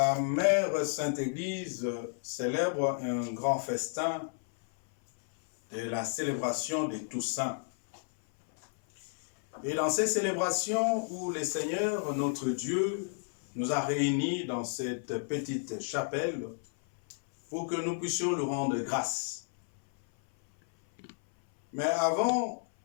Mère Sainte Église célèbre un grand festin de la célébration de Toussaint. Et dans ces célébrations où le Seigneur, notre Dieu, nous a réunis dans cette petite chapelle pour que nous puissions lui rendre grâce. Mais avant,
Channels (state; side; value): silent; right; 57 dB below the other